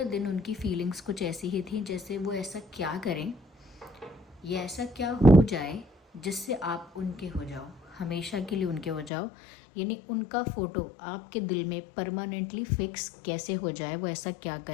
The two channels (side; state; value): right; drops out; at 9.1 s